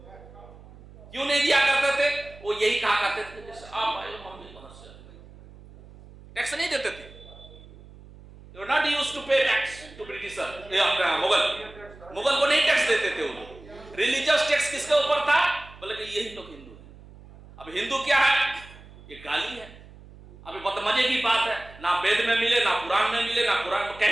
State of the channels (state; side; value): noise; right; hum, 20 dB below the sound